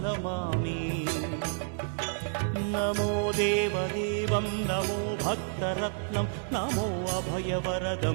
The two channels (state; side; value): silent; left; 58 dB below the other